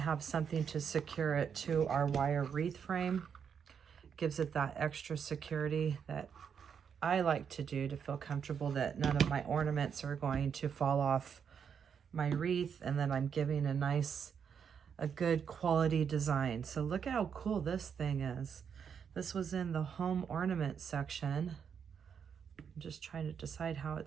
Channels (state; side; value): quieter; left; 7.2 dB